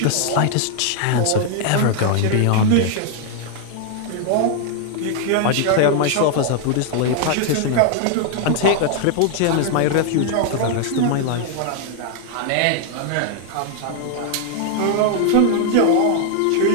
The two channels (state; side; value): different; both; correlation 0.00